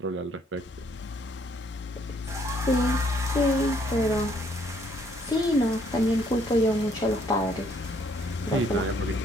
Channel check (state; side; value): normal; both; correlation 0.67